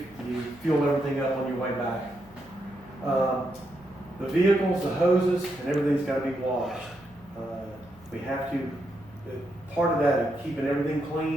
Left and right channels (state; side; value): noise; left; hum, 25 dB below the sound